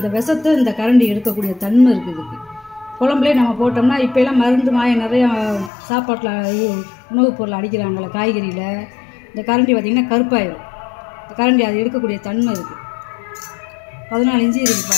விஷத்தை இந்த கரண்டி எடுக்கக்கூடிய தன்மை இருக்குது இதுக்கு. குழம்புலேயே நம்ம போட்டோம்னா இப்போலாம் மருந்து மாயம் நிறையா சாப்பாட்டில் உணவுப் பொருள் அடிக்கிறாங்களே, காய்கறியில். இந்த கரண்டி பார்த்திங்கன்னா கருப்பாயிடும். இந்த கரண்டி அது எடுக்கக்கூடிய தன்மை இருக்குது. 14 இன்ச்சு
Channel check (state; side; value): drops out; right; at 5.7 s